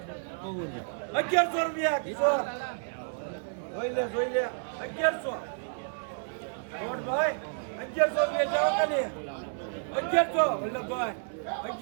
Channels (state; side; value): silent; left; digital silence